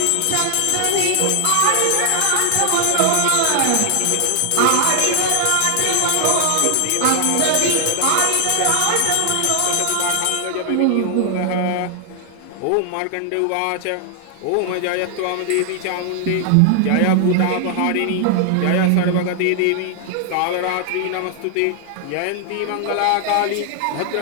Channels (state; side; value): different; both; correlation 0.00